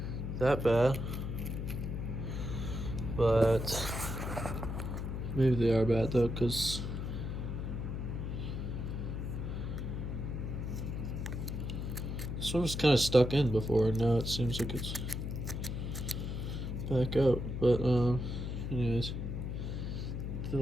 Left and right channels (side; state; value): left; noise; hum, 4 dB below the sound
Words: that bad. But maybe they are bad though, because this one was kind of stuck in before, and now it seems like it's back out. But anyways, they